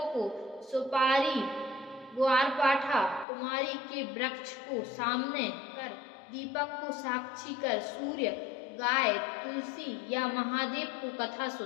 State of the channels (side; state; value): right; drops out; at 3.2 s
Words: को, सुपारी, ग्वारपाठा, कुमारी के वृक्ष को सामने कर, दीपक को साक्षी कर सूर्य, गाय, तुलसी या महादेव को कथा